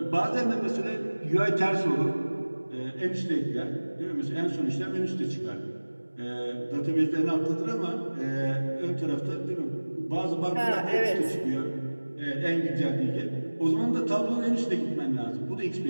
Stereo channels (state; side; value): inverted; both; correlation -1.00